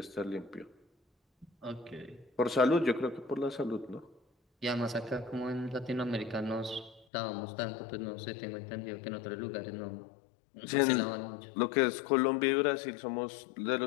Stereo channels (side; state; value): right; drops out; at 7.1 s